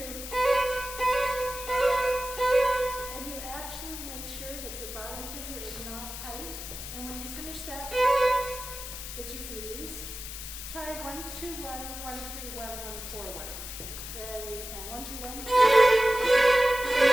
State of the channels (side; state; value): left; noise; hiss, 9 dB below the sound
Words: and you actually make sure that your bottom finger is not tight. And when you finish that, that you've released, try 1, 2, 1, 1, 3, 1, 1, 4, 1. Ready, and 1, 2, 1.